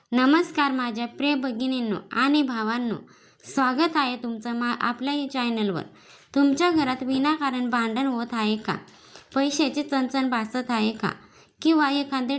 नमस्कार माझ्या प्रिय भगिनींनो आणि भावांनो, स्वागत आहे तुमचं आपल्या या चॅनलवर. तुमच्या घरात विनाकारण भांडण होत आहे का? पैशाची चणचण भासत आहे का? किंवा एखादे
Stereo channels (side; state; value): both; identical; correlation 1.00